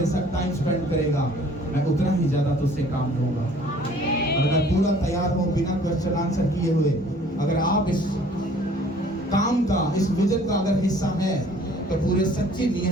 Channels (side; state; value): both; normal; correlation 0.54